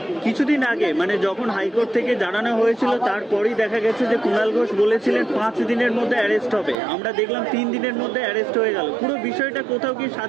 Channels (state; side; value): drops out; left; at 6.8 s